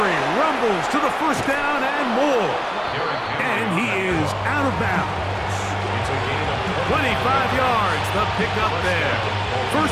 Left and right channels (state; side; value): identical; both; correlation 1.00